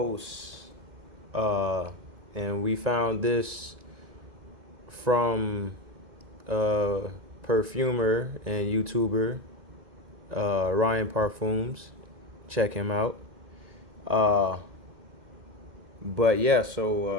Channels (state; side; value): late; left; 2.1 ms